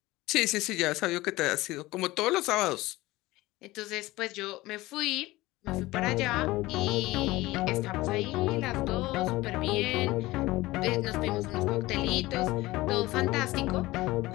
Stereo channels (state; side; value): quieter; right; 19.1 dB